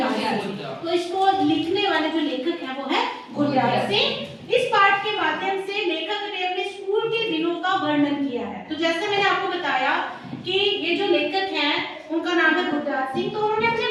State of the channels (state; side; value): identical; both; correlation 1.00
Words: सिंह। तो इसको लिखने वाले जो लेखक है वो है गुरदयाल सिंह। इस पाठ के माध्यम से लेखक ने अपने स्कूल के दिनों का वर्णन किया है। तो जैसे मैंने आपको बताया कि ये जो लेखक हैं उनका नाम है गुरदयाल सिंह, तो उन्होंने अपने